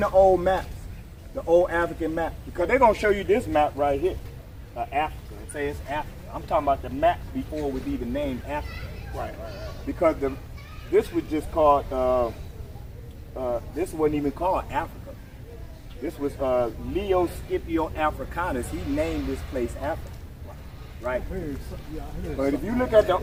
the old maps? The old African map? Because they're gonna show you this map right here. Africa. It says Africa. I'm talking about the map before it was even named Africa. Right. Because this was just called, this wasn't even called Africa. This was Leo Scipio Africanus. He named this place Africa. Right? But if you look at the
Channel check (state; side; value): identical; both; correlation 1.00